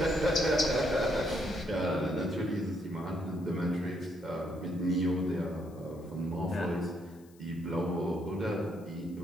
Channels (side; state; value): left; noise; hiss, 29 dB below the sound